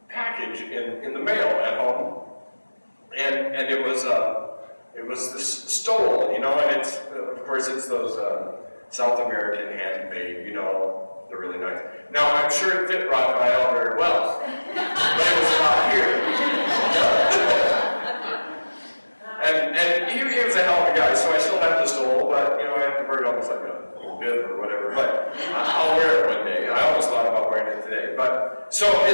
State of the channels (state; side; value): inverted; both; correlation -1.00